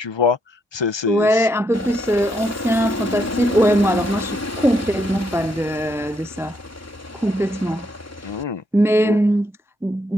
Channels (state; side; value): normal; both; correlation 0.76